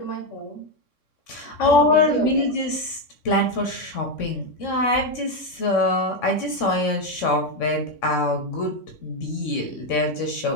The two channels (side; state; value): right; late; 3.6 ms